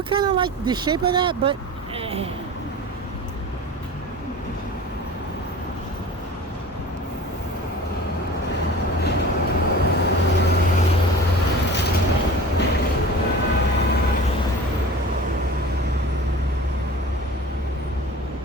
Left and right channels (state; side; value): normal; both; correlation 0.39